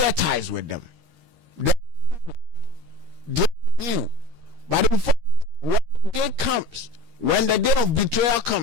ties with them. They you. But when the day comes, when the day of betrayal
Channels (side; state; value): left; late; 13 ms